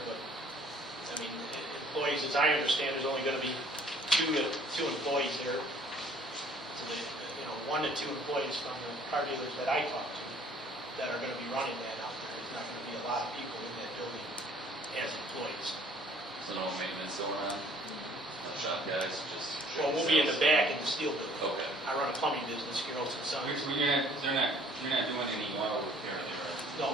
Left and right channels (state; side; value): normal; both; correlation 0.56